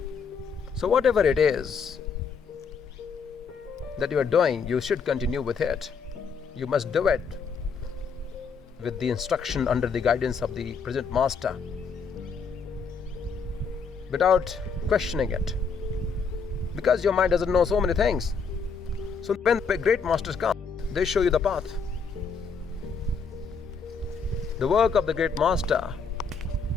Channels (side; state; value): right; quieter; 5.4 dB